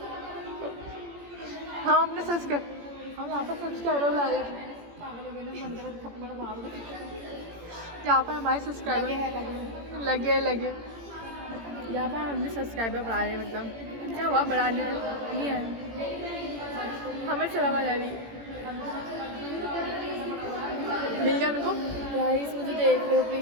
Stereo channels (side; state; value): left; late; 18 ms